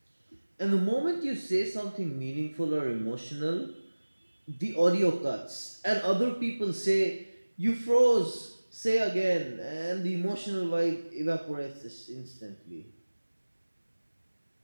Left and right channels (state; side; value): inverted; both; correlation -1.00